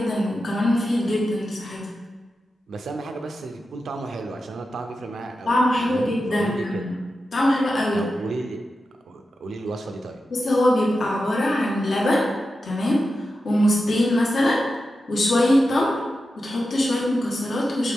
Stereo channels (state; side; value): normal; both; correlation 0.91